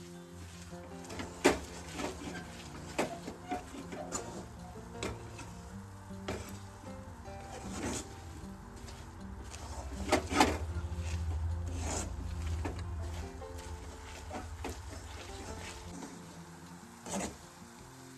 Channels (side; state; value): both; identical; correlation 1.00